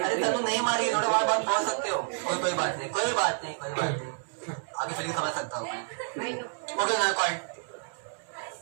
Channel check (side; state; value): left; silent; 58 dB below the other